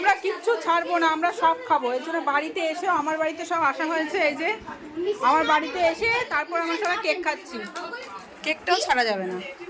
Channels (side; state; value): both; identical; correlation 1.00